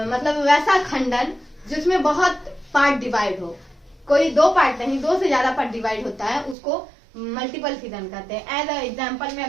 मतलब वैसा खंडन जिसमें बहुत पार्ट डिवाइड हो, कोई 2 पार्ट नहीं 2 से ज्यादा पार्ट डिवाइड होता है, उसको मल्टीपल फिजन कहते हैं। एज एग्जाम्पल में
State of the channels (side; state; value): left; drops out; at 6.6 s